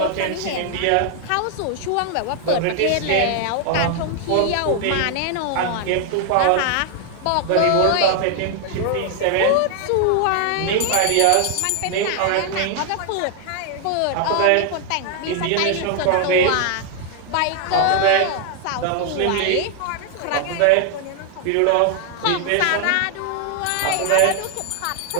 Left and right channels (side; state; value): both; different; correlation 0.00